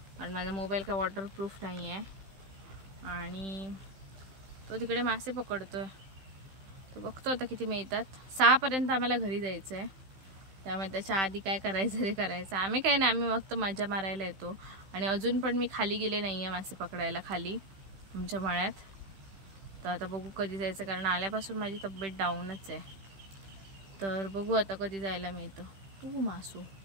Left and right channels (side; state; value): left; late; 15 ms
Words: आणि माझा मोबाईल काय वॉटरप्रूफ नाही आहे. आणि तो तिकडे मासे पकडतोय. तो बघतो आता किती मिळतात. 6 पर्यंत आम्हाला घरी जायचं आहे, त्यामुळे त्याच्या आधी काय करायचं ते करायचं. आम्ही काय नाही, आम्ही फक्त मजा मारायला येतो. आणि अजून पण मी खाली गेले नाही आहे मासे पकडायला खाली आमच्या मळ्यात. तर आता बघू कधी जायचं, कारण आल्यापासून माझी तब्येत डाऊनच आहे. तर बघू आता कधी जायला मिळतं. तू मासू